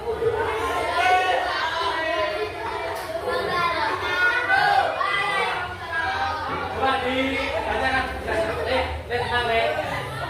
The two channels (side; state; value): both; identical; correlation 1.00